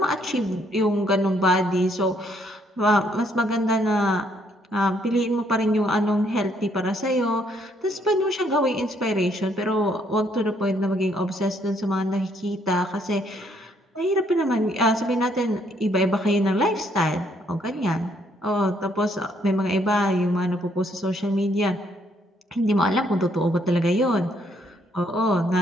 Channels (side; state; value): both; normal; correlation 0.69